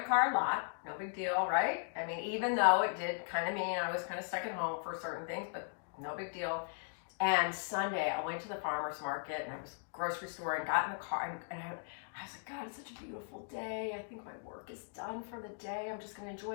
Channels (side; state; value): right; silent; digital silence